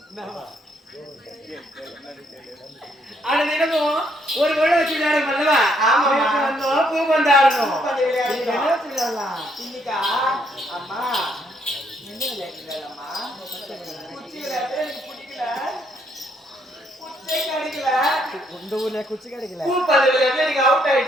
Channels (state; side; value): normal; both; correlation 0.71